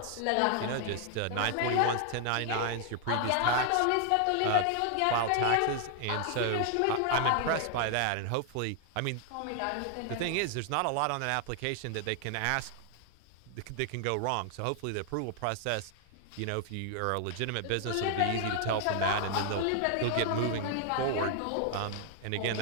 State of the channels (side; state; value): both; different; correlation 0.00